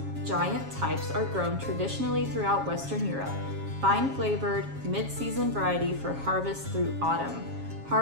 giant types are grown traditionally throughout Western Europe. Fine flavored, mid-season variety for harvest through autumn.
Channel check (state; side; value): late; left; 7.3 ms